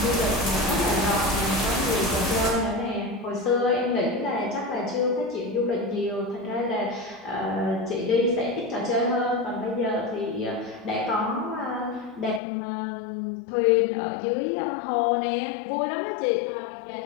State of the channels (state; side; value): drops out; right; at 12.4 s